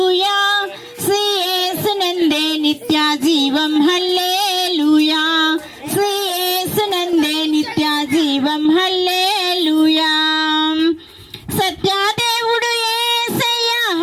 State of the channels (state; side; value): identical; both; correlation 1.00